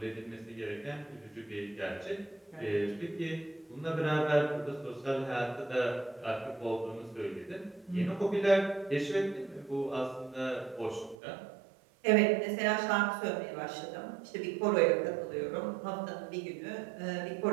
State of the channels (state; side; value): drops out; left; at 11.2 s